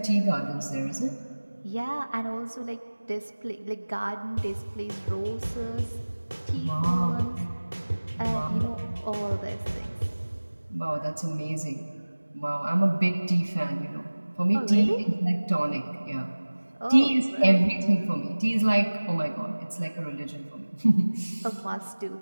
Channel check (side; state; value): both; inverted; correlation -1.00